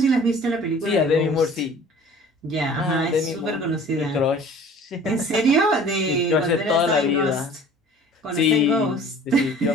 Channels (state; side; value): normal; both; correlation 0.47